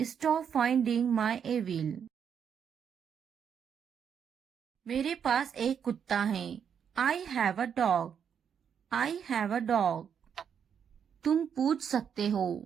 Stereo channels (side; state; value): left; quieter; 7.7 dB